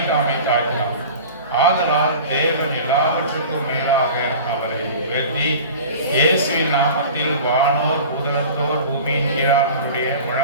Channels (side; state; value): both; inverted; correlation -0.38